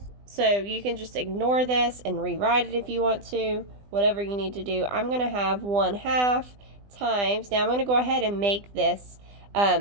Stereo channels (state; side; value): late; left; 20 ms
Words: So you can just ignore this and rewrite it if you want to, whatever you need to do. I'm going to have 1/2 times, now I'm going to go ahead and make this